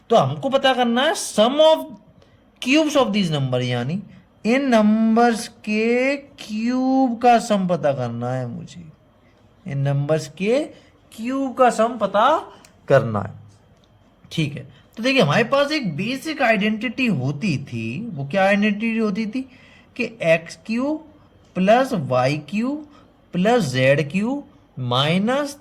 तो हमको पता करना है sum of cubes of these number, यानी इन नंबर्स के क्यूब का सम पता करना है मुझे। इन नंबर्स के क्यूब का सम पता करना है। ठीक है, तो देखिए हमारे पास एक बेसिक आइडेंटिटी होती थी। वो क्या आइडेंटिटी होती थी कि x cube plus y cube plus z cube minus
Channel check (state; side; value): identical; both; correlation 1.00